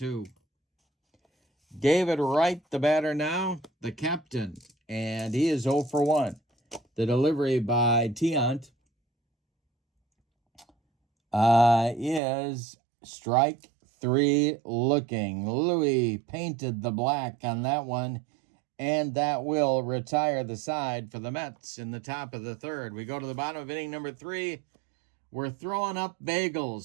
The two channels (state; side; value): drops out; left; at 12.2 s